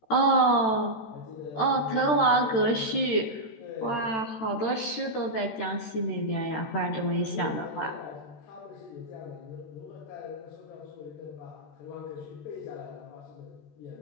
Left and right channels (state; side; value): late; right; 13 ms